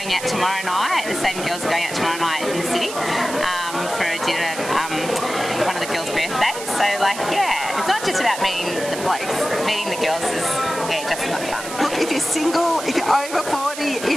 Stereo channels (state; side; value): noise; right; hiss, 10 dB below the sound